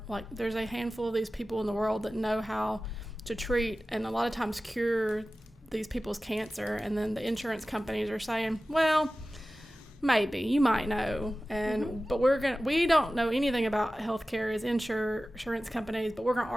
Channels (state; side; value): normal; both; correlation 0.96